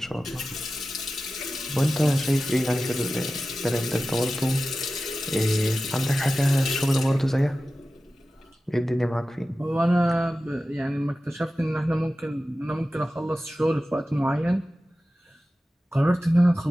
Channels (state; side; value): normal; both; correlation 0.95